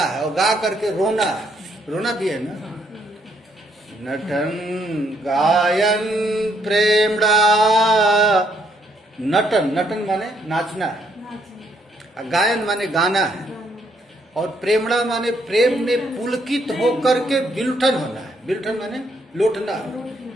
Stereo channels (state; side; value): normal; both; correlation 0.71